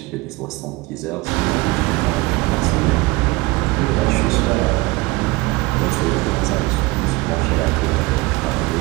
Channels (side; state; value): left; quieter; 22.5 dB